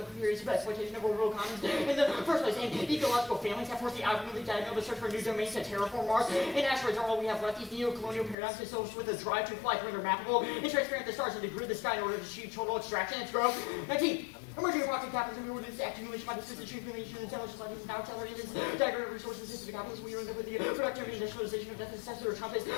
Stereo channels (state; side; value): drops out; right; at 8.3 s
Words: of periods of exploitation of orbital commons in the first place. And ecological families have forced the outwardly diagonal to search for new domains to terraform Mars. And asteroids are all we have left. These neo-colonial paradigms associated with a drive to fly to render mappable and transparent the stars and to grid the sky in order to achieve total extraction and growth. 19. Emerging approximate capitalism in order to accumulation by the system accumulation and intelligence like these now accelerated diagram of resources into the capitalism. We end up with the productive industrialization of death and successor of Trump is